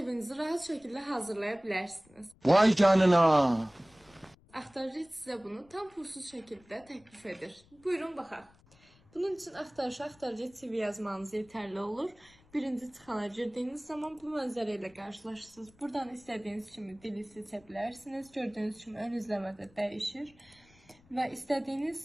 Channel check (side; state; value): left; noise; rumble, 28 dB below the sound